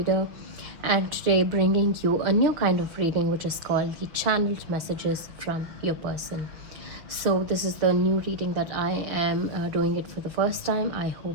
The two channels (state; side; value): late; left; 6.5 ms